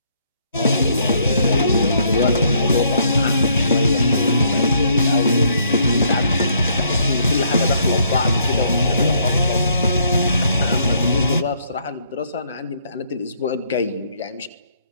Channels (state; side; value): inverted; both; correlation -0.69